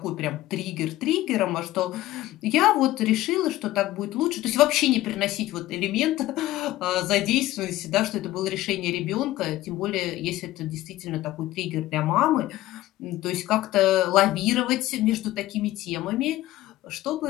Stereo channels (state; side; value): quieter; right; 16.0 dB